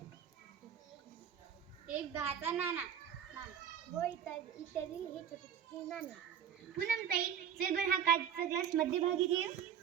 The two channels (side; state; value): left; quieter; 8.6 dB